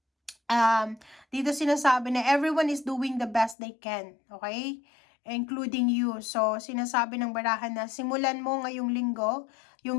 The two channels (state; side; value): drops out; right; at 3.6 s